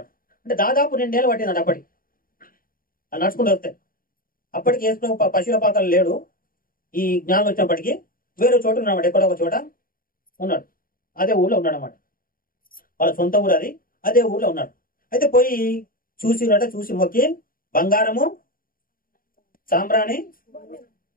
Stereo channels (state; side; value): late; right; 0.41 ms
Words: అంటే దాదాపు 2 ఏళ్ళు పట్టిందంట అప్పటికి అది నడుచుకుంటూ వస్తే. అప్పటికి యేసు ప్రభు పశువుల పాకలు లేడు. ఈ జ్ఞానం వచ్చినప్పటికీ వేరే చోట ఉన్నాడు, ఎక్కడో ఒక చోట ఉన్నాడు. అదే ఊళ్ళో ఉన్నాడు అన్నమాట. వాళ్ళ సొంత ఊరు అది, అదే ఊళ్ళో ఉన్నాడు. అయితే పోయి చూసి మొక్కి బంగారము, సాంబ్రాణి,